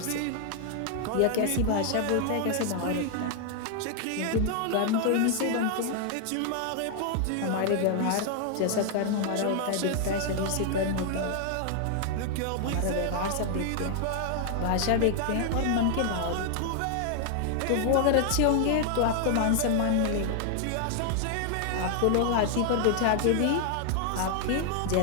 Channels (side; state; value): both; different; correlation 0.00